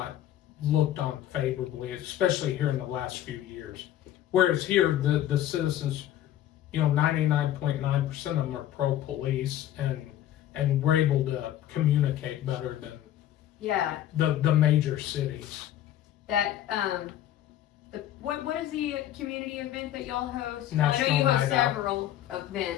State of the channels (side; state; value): right; quieter; 12.2 dB